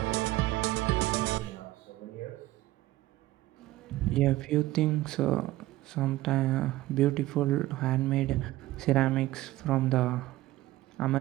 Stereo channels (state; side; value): quieter; left; 16.7 dB